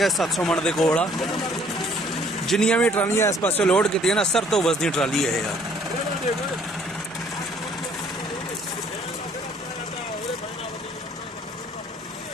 700 ਮਣ ਦੇ ਕੋਲ ਆ। ਜਿੰਨੀਆਂ ਵੀ ਟਰਾਲੀਆਂ ਇਸ ਪਾਸੇ ਲੋਡ ਕੀਤੀਆਂ ਨਾ ਸਰ ਤੋਂ ਵਸਦੀ ਟਰਾਲੀ ਇਹ ਆ।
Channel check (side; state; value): both; normal; correlation 0.60